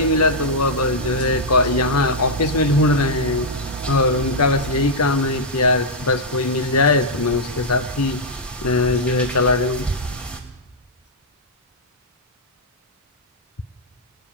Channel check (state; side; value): normal; both; correlation -0.06